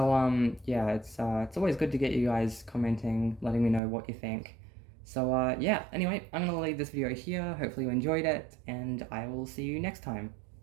yeah, it's always good to get you guys commenting, letting me know what you think. So yeah, anyway, I'm gonna leave this video here. Hopefully you enjoyed it, and I will see you next time.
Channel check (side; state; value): left; drops out; at 3.8 s